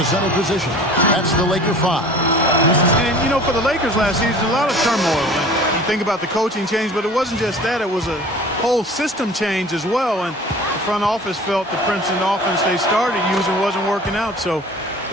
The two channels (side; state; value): both; normal; correlation 0.44